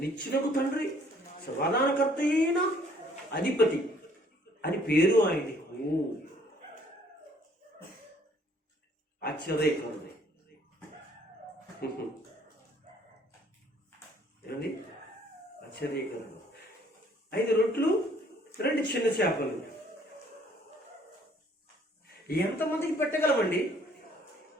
నిత్యులకు తండ్రి, సమాధానకర్త అయిన అధిపతి అని పేరు ఆయనకు. ఆశ్చర్యకరుడు ఏమండి? ఆశ్చర్యకరుడు. 5 రొట్లు 2 చిన్న చేపలు ఎంతమందికి పెట్టగలమండి?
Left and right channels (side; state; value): both; normal; correlation 0.61